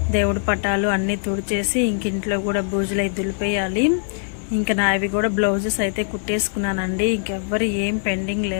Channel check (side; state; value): right; silent; digital silence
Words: దేవుడి పటాలు అన్నీ తుడిచేసి ఇంక ఇంట్లో కూడా బూజులు అయితే దులిపేయాలి. ఇంకా నావి కూడా బ్లౌజెస్ అయితే కుట్టేసుకున్నానండి. ఇంకెవ్వరు ఏం పెండింగ్